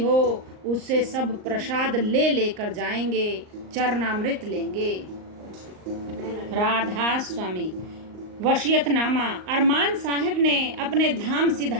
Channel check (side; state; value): left; late; 38 ms